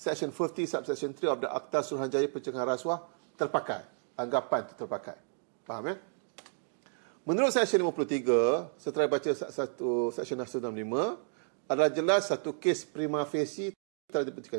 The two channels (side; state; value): left; silent; 56 dB below the other